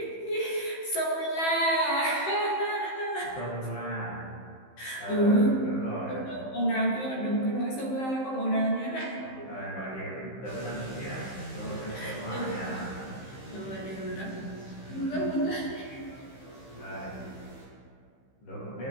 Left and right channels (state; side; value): late; right; 15 ms